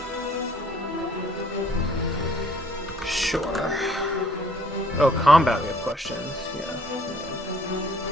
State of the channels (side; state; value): both; normal; correlation 0.60